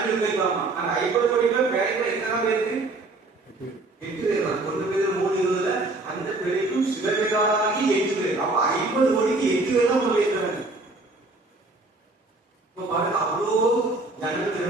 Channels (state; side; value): quieter; left; 3.1 dB